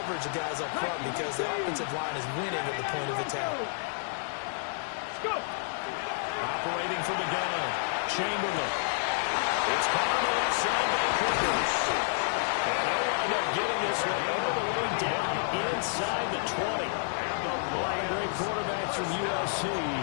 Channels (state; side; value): silent; right; digital silence